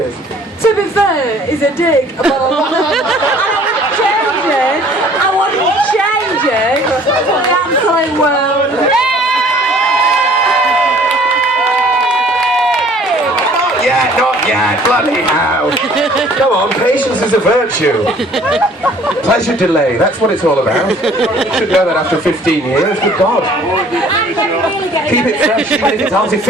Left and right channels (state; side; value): normal; both; correlation 0.54